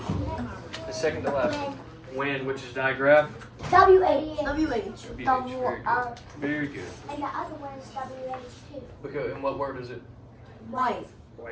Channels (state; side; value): identical; both; correlation 1.00